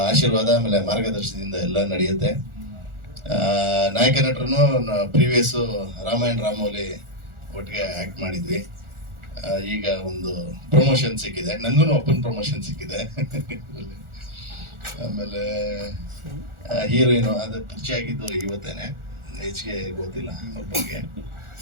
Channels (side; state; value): left; late; 1.4 ms